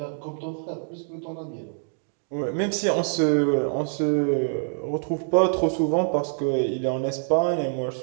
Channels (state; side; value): silent; left; digital silence